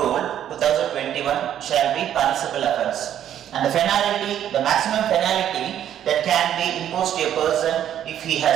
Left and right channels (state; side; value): quieter; left; 10.5 dB